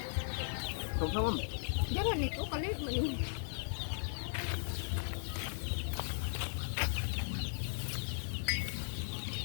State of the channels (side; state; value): right; silent; digital silence